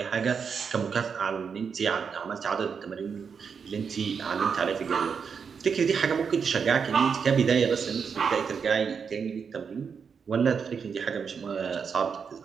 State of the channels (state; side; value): quieter; left; 6.2 dB